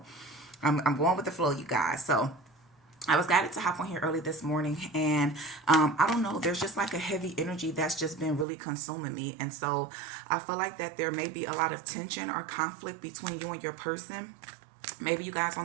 I'm going with the flow, you guys. So I was guided to hop on here early this morning, and I don't know, there's just like a heavy energy that's just been really consuming me. And so I feel like that there may be a lot of tension or conflict between you and your person. Maybe you guys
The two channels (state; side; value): drops out; left; at 8.5 s